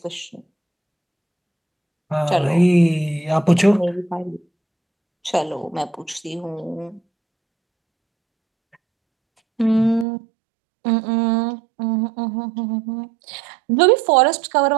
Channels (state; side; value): drops out; left; at 10.1 s